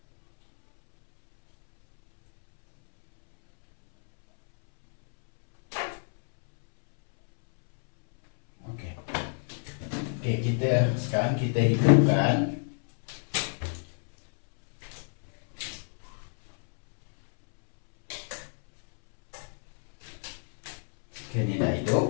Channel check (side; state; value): right; silent; 60 dB below the other